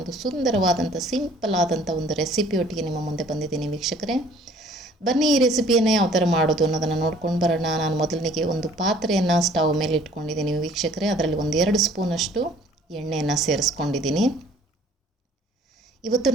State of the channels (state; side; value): normal; both; correlation 0.56